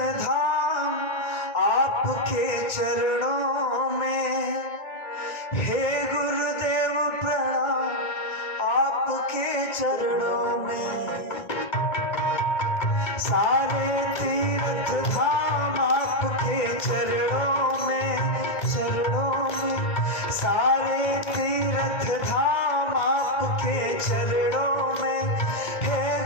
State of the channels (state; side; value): late; right; 2.1 ms